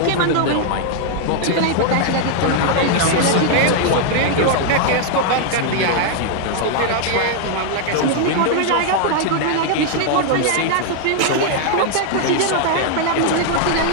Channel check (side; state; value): both; different; correlation 0.00